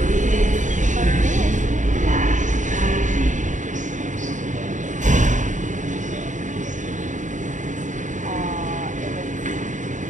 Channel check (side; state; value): left; late; 0.36 ms